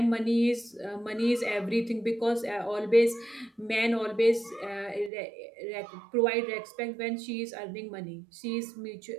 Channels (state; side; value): drops out; left; at 5.1 s